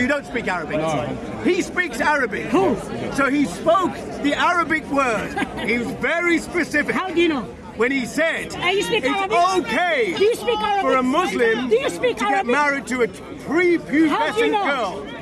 don't speak Arabic. No. He speaks Arabic. Who? So he spoke the Arabic word. He was very specific. How do you know? when he said you speak it's Arabic? okay Do you speak Arabic? for a Muslim Do you speak to get Arabic? married to a pre-pubescent How do you know? girl.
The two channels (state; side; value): identical; both; correlation 1.00